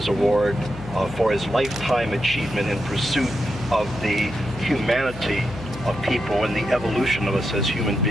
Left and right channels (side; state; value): left; noise; hum, 13 dB below the sound